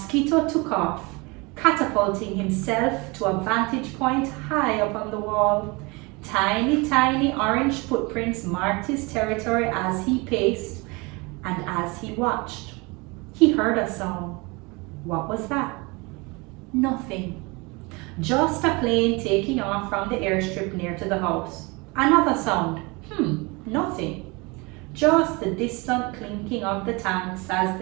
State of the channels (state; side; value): quieter; left; 26.8 dB